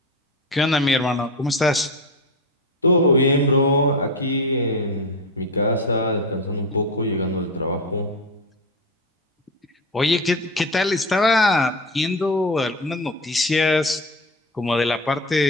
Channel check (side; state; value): both; normal; correlation 0.21